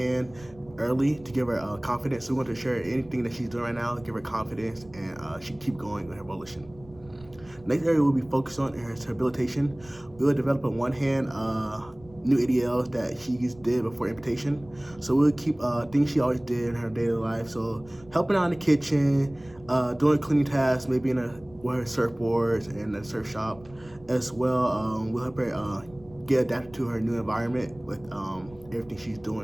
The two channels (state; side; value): noise; right; rumble, 23 dB below the sound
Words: early to give her confidence. So we want to ensure anything that she's doing right now, give her confidence, and she keep going with her volition. Next area we'll be focused on is rehabilitation. We will develop on one hand new ADLs that she did before amputation. So we'll keep things she always did in her daily life. So helping out in the kitchen, doing cleaning tasks, maybe with her surfboards and the surf shop as well. We'll help her get adapted to her new environment with everything she's